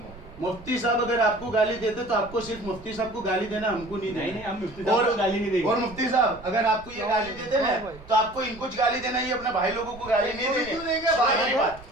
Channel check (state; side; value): noise; right; rumble, 19 dB below the sound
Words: मुफ्ती साहब अगर आपको गाली देते तो आपको सिर्फ मुफ्ती साहब को गाली देना हमको नहीं देना। हम मुफ्ती साहब को गाली नहीं देंगे। और मुफ्ती साहब अगर आपको ये गाली देते ना तो आपको इनको गाली देना ही अपने भाई लोगों को गाली नहीं क्यों देनी देंगे भाई? भाई बात।